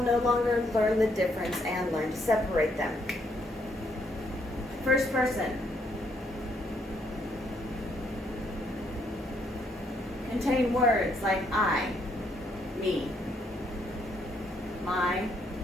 no longer learn the difference and learn to separate them. First person. Contain words like I, me, my,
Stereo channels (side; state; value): both; normal; correlation 0.72